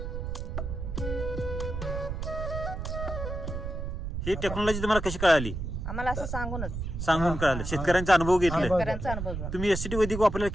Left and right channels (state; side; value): noise; right; rumble, 5 dB below the sound